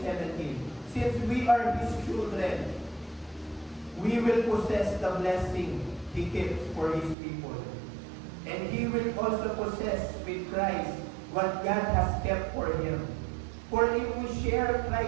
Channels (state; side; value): drops out; left; at 7.2 s